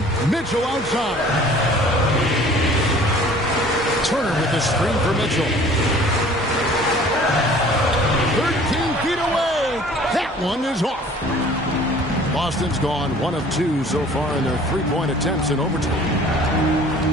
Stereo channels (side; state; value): both; normal; correlation 0.50